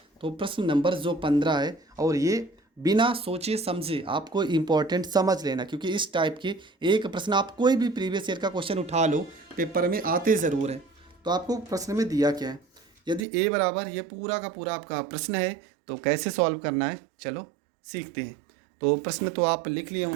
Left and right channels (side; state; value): left; drops out; at 13.2 s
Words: तो प्रश्न नंबर जो 15 है, और ये बिना सोचे समझे आपको इम्पोर्टेंट समझ लेना, क्योंकि इस टाइप के एक प्रश्न आप कोई भी प्रीवियस ईयर का क्वेश्चन उठा लो, पेपर में आते ज़रूर है। तो आपको प्रश्न में दिया क्या है, यदि ए बराबर ये पूरा का पूरा आपका प्रश्न है तो कैसे सॉल्व करना है, चलो सीखते हैं। तो प्रश्न तो आप लिख लिए